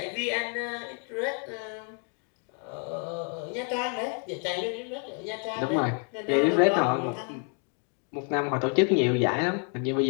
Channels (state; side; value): quieter; right; 38.9 dB